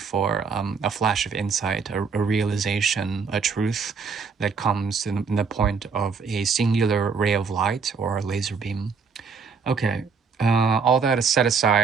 a flash of insight, a realization, a truth that comes in the point of a singular ray of light or a laser beam. Okay, all that is set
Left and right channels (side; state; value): left; quieter; 5.4 dB